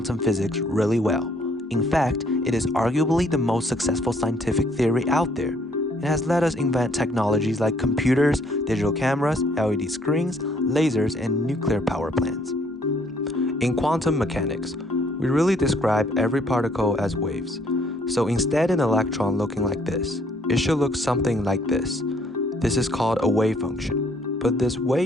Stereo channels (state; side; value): normal; both; correlation 0.65